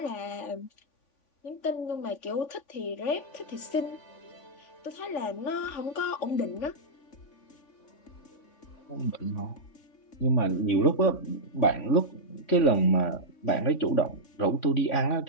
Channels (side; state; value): right; late; 3.5 ms